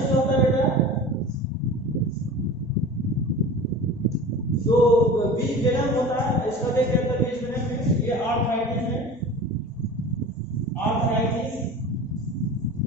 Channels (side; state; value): both; normal; correlation 0.36